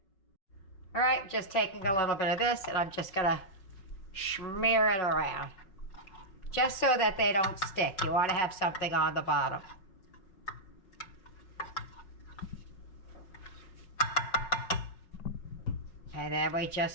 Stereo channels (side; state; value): right; late; 5.3 ms